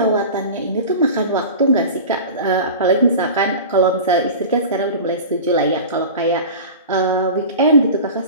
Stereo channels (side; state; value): both; inverted; correlation -0.34